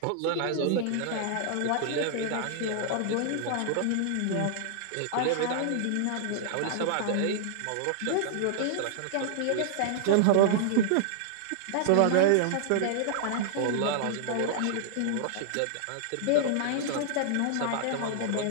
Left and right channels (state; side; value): different; both; correlation -0.01